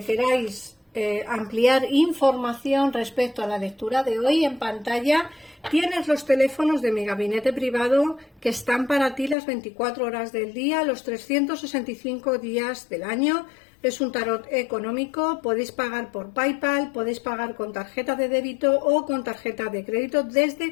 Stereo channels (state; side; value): drops out; right; at 9.3 s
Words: queráis ampliar información respecto a la lectura de hoy, en pantalla tienes los teléfonos de mi gabinete privado que están para ti las 24 horas del día, los 365 días del año. Es un tarot económico, podéis pagar por PayPal, podéis pagar con tarjeta de débito o con tarjeta de crédito